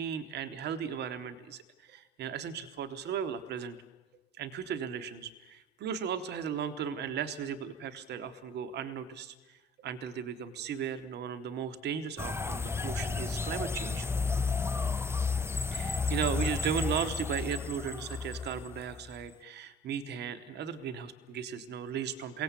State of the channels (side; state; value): both; normal; correlation 0.46